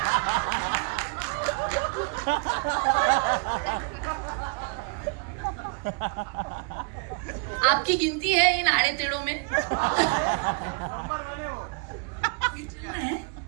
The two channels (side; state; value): left; quieter; 35.5 dB